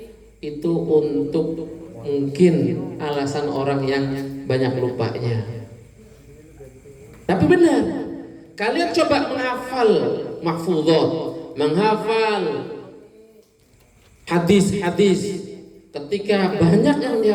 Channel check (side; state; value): both; identical; correlation 1.00